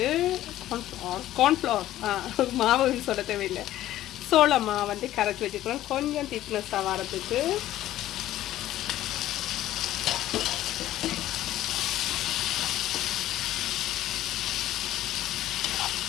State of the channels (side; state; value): right; quieter; 13.8 dB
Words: கார்ன்ஃப்ளவர் மாவுன்னு சொல்ல தேவையில்லை, சோள மாவு வந்து கரைச்சி வச்சுக்கிறோம் கொஞ்சம் திக்னஸாக வரதுக்கு.